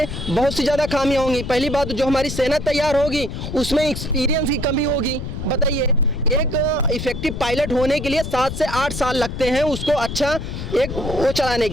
बहुत सी ज़्यादा खामियां होंगी। पहली बात, जो हमारी सेना तैयार होगी उसमें एक्सपीरियंस की कमी होगी। बताइए, एक इफेक्टिव पायलट होने के लिए 7 से 8 साल लगते हैं उसको अच्छा एक वो चलाने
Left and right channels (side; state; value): left; noise; rumble, 6 dB below the sound